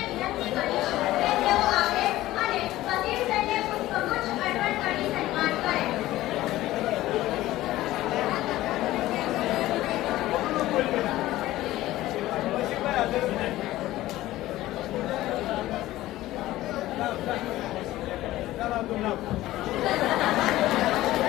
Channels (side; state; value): right; quieter; 16.0 dB